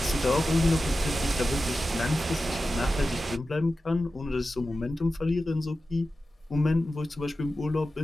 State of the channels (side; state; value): both; normal; correlation 0.93